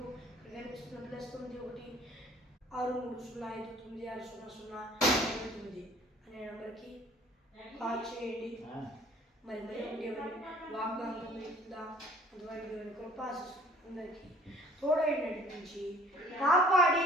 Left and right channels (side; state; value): both; normal; correlation 0.53